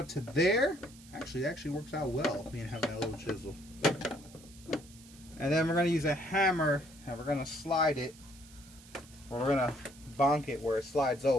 to there. Actually, it actually works out well, me and having that little chisel. And then we're gonna use a hammer and we're gonna slide it, or we're gonna bonk it where it slides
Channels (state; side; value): noise; right; hiss, 22 dB below the sound